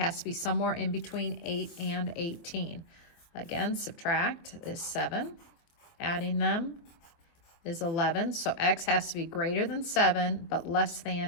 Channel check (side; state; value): right; late; 24 ms